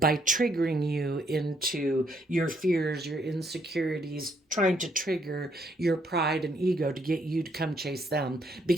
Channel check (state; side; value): normal; both; correlation 0.71